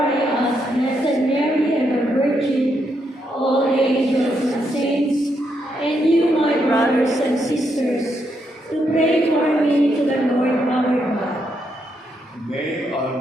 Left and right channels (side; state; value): both; normal; correlation 0.79